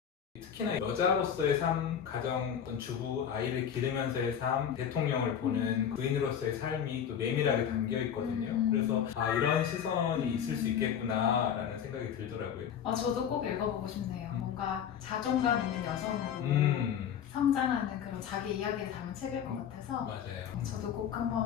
특히나 여자로서의 삶, 가정, 어떤 주부, 아이를 기르면서의 삶, 대통령을 보는 부인으로서의 삶이 또 내밀하게 담겨 있거든요. 그래서 이런 시선이 있을 수 있겠구나라는 생각이 들더라고요. 저도 꼭 읽어보고 싶네요. 뭔가 자존감 있는 여성으로 성장하는 그런 자기 이야기를 담은 책일 것 같아서 맞아요. 저도 꼭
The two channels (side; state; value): right; quieter; 8.6 dB